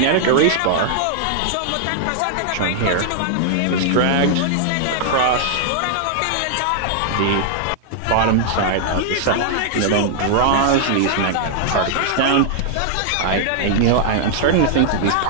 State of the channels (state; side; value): different; both; correlation -0.01